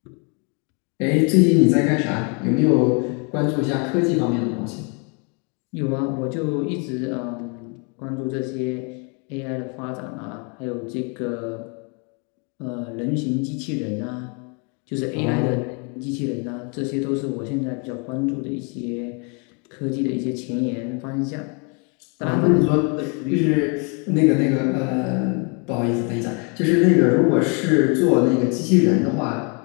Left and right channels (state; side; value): quieter; right; 35.6 dB